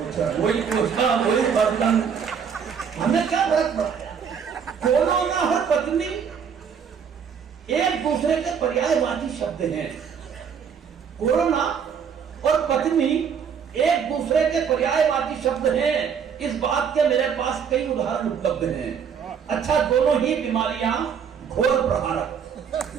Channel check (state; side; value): quieter; left; 7.1 dB